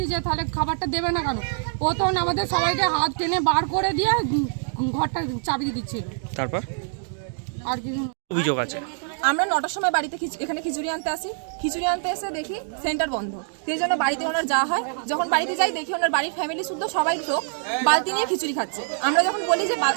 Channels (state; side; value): silent; left; digital silence